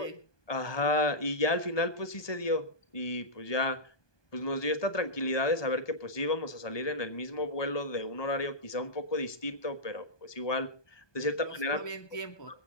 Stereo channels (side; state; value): right; late; 1.2 ms